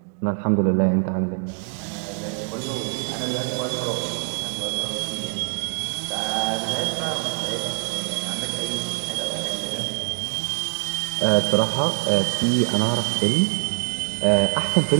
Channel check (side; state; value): left; quieter; 36.0 dB